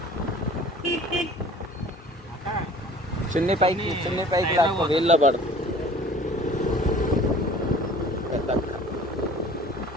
చున్నీ పైకి లేకపోతే వీళ్ళలో పడుతుంది.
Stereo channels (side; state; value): both; normal; correlation 0.47